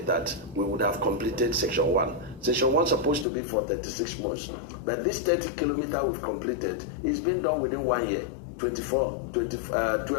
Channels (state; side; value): drops out; right; at 3.2 s